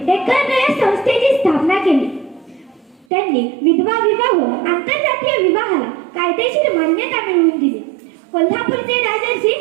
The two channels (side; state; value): left; drops out; at 3.1 s